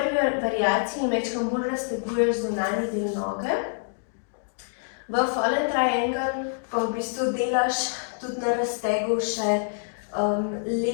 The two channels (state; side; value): silent; right; digital silence